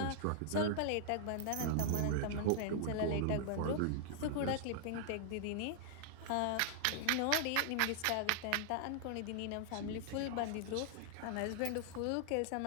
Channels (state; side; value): different; both; correlation -0.01